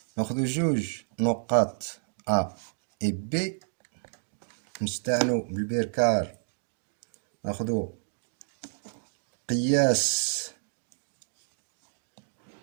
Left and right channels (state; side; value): silent; left; digital silence